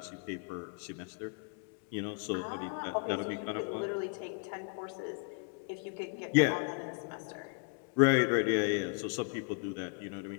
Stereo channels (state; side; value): quieter; right; 38.8 dB